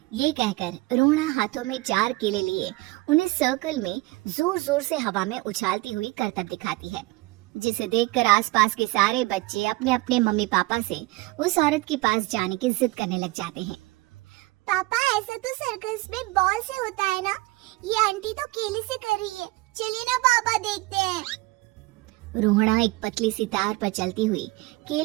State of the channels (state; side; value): quieter; left; 21.4 dB